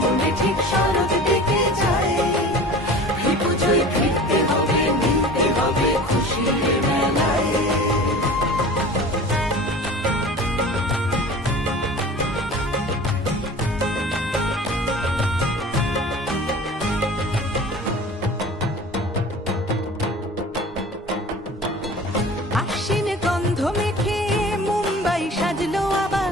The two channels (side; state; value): both; normal; correlation 0.40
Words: ঠিক শরৎ দিকে যায়। পুজোয় ফিরতে হবে, মিলতে হবে খুশির মেলায়। আশ্বিন গন্ধ মেখে মুম্বাই সাজলো আবার।